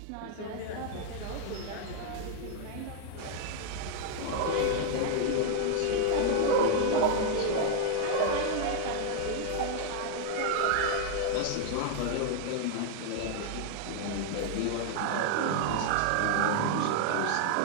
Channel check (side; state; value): both; different; correlation 0.00